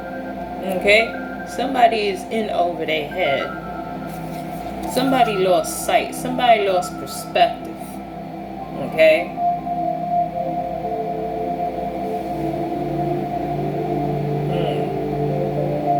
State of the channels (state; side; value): identical; both; correlation 1.00